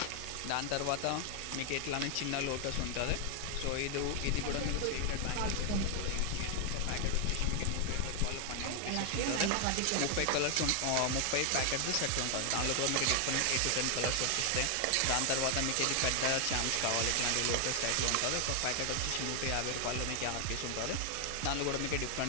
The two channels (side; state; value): both; different; correlation 0.00